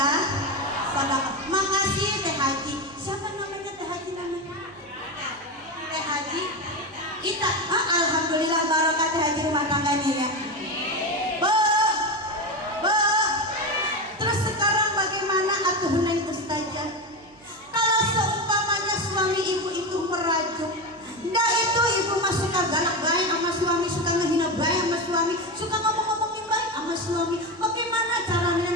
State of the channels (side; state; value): right; noise; hum, 29 dB below the sound